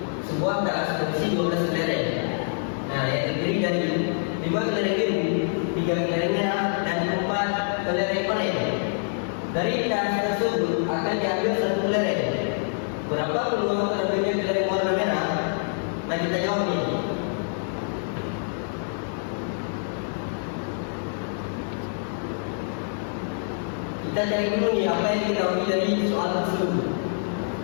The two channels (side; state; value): right; silent; 61 dB below the other